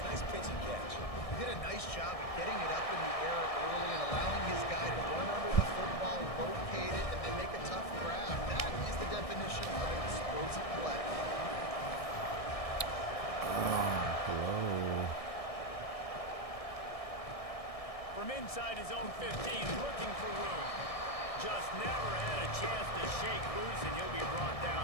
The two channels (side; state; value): right; late; 1.6 ms